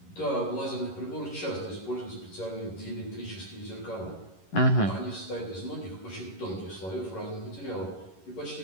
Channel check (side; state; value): right; late; 11 ms